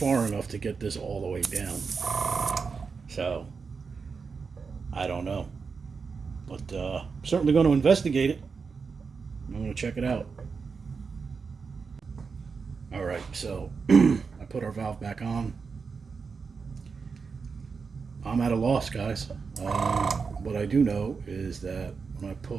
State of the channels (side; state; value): left; quieter; 5.2 dB